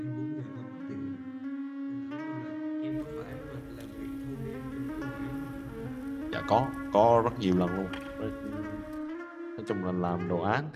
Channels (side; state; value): both; identical; correlation 1.00